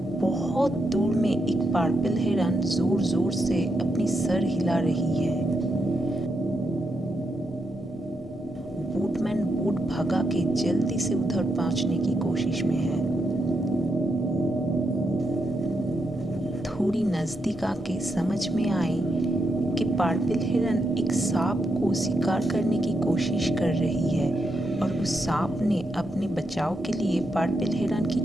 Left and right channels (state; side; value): normal; both; correlation 0.82